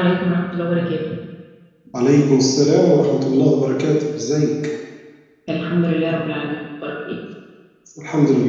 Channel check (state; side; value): identical; both; correlation 1.00